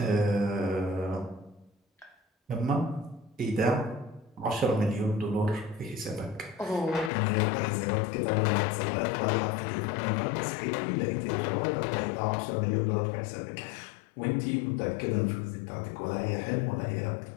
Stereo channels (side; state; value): right; drops out; at 7.1 s